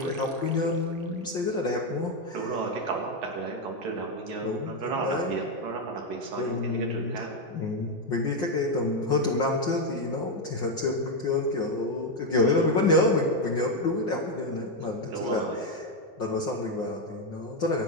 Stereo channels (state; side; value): normal; both; correlation 0.05